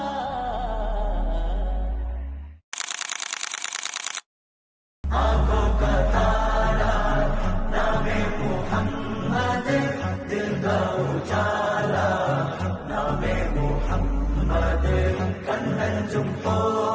ആँखों का तारा नामे मुहम्मद, दिल का उजाला नामे മുഹമ്മദ്, കണ്ണഞ്ചും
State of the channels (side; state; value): both; identical; correlation 1.00